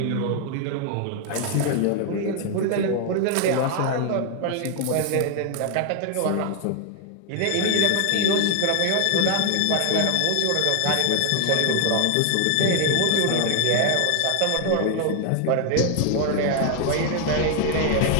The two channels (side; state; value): both; different; correlation 0.01